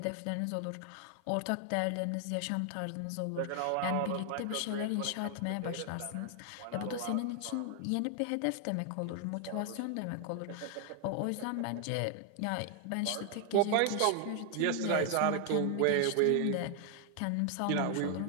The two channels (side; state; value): both; different; correlation 0.00